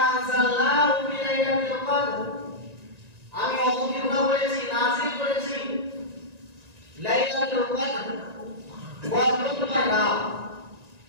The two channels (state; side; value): late; left; 1.9 ms